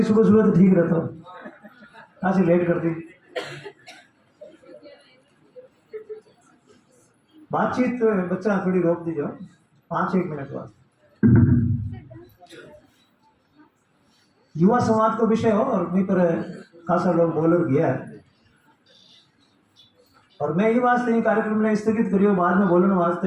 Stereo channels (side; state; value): both; identical; correlation 1.00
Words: सुबह तो ठीक रहता, ऐसे लेट करती। बातचीत बच्चा थोड़ी रोक दीजिए 5-1 मिनट बाद। युवा समाज को विषय हो और वहीं पर खासा लोग बोलर गया है, और मैं ये वास्ते ही कार्यक्रम ने स्थगित करियो बाद में बोलने